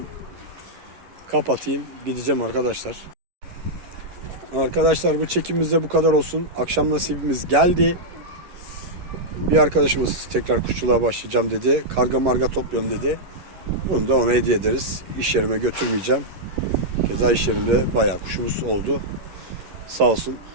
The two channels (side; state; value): left; late; 11 ms